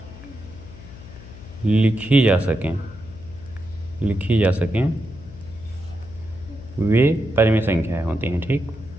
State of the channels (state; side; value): noise; left; hum, 17 dB below the sound